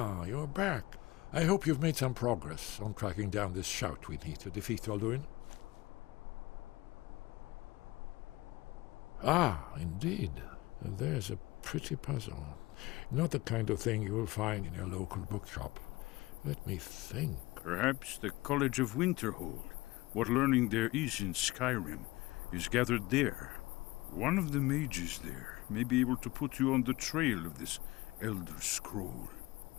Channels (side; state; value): right; quieter; 20.5 dB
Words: you're back. I hope you've made some progress on tracking down this shout we need to defeat Alduin. Ah, indeed. There's a pretty puzzle. Not the kind of thing you will find in your local bookshop. Let me think. Perhaps the College of Winterhold, what learning there is in Skyrim, is gathered there. One of the mages there may be able to put you on the trail of this Elder Scroll.